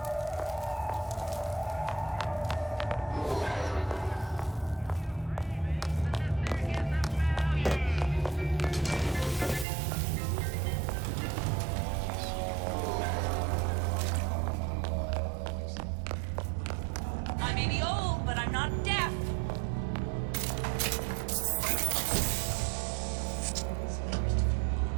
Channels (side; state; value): left; drops out; at 9.7 s